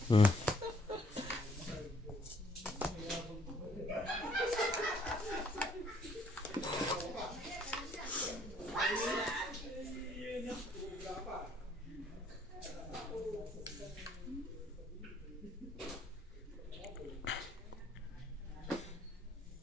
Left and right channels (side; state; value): both; normal; correlation 0.64